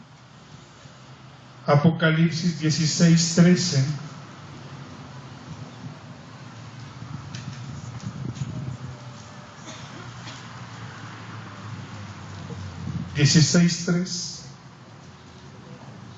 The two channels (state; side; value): identical; both; correlation 1.00